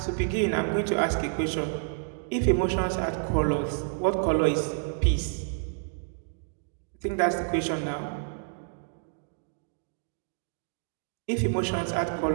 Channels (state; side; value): silent; left; digital silence